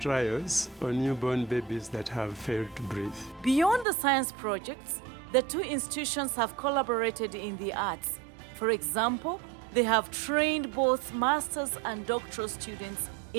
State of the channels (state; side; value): drops out; left; at 3.9 s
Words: on newborn babies that have failed to breathe. Beyond the science projects, the two institutions have collaborated in the arts. For example, they have trained both master's and doctoral students